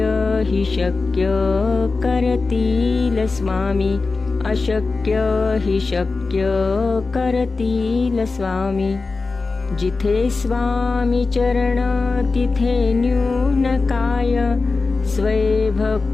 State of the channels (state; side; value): quieter; right; 3.9 dB